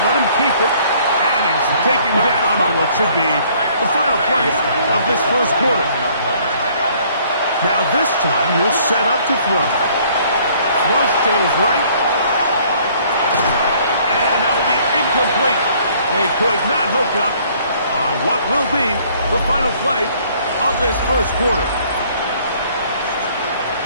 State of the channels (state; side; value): inverted; both; correlation -0.60